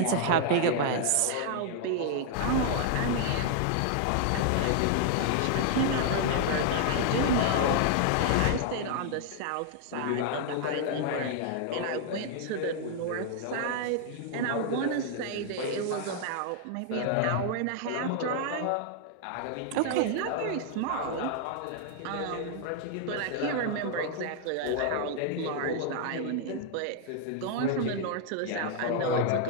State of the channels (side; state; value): both; different; correlation 0.00